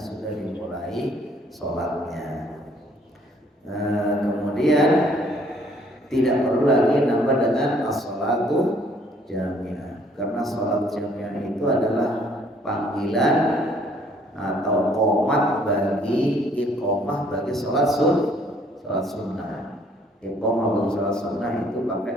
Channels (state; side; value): normal; both; correlation 0.61